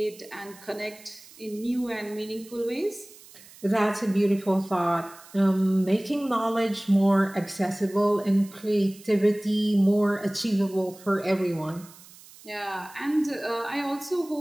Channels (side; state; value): right; noise; hiss, 21 dB below the sound